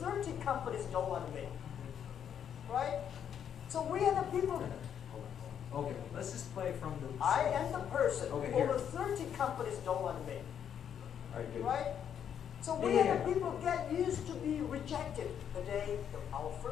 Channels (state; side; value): quieter; right; 8.7 dB